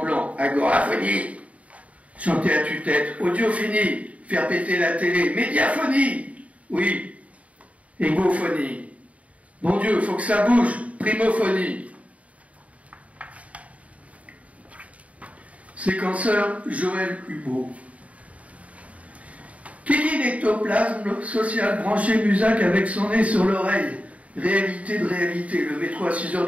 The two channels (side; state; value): left; late; 0.067 ms